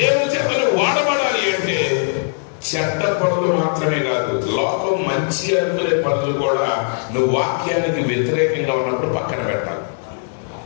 చేతలు వాడబడాలి అంటే చెడ్డ పనులు మాత్రమే కాదు, లోకం మంచి అనుకునే పనులు కూడా నువ్వు వాక్యానికి వ్యతిరేకంగా ఉన్నప్పుడు పక్కన పెట్టాలి.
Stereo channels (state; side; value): silent; right; digital silence